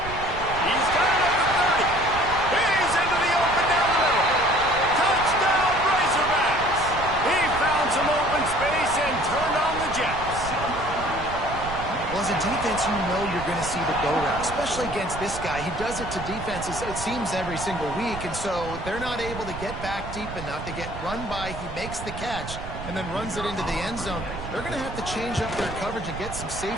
He's got it at the 30. He's into the open down the middle. Touchdown, Razorbacks. He found some open space and turned on the Jets. Well, as a defense, you know you're going to see the go route, especially against this guy. He does it to defenses, it seems, every single week, and so they're not able to get back deep enough to get run by. He makes the catch and then runs it into the end zone. They're going to have to change up their coverage and get some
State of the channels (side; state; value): right; noise; rumble, 10 dB below the sound